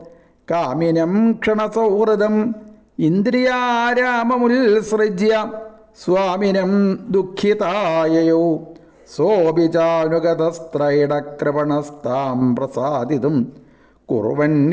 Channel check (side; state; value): both; identical; correlation 1.00